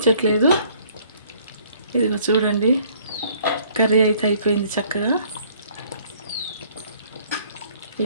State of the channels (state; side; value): inverted; both; correlation -0.59